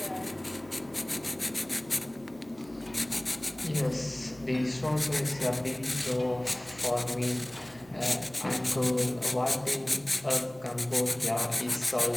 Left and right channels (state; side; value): noise; right; hum, 23 dB below the sound